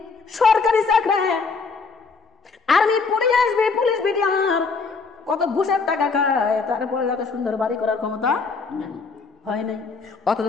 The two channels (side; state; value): right; quieter; 4.6 dB